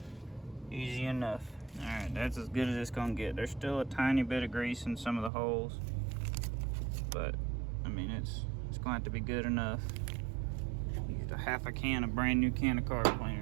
Easy enough. All right, that's as good as it's gonna get. There's still a tiny bit of grease in some of the holes, but I mean, it's gonna have to be good enough. Used a half a can of brand new can of car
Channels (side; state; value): left; drops out; at 5.3 s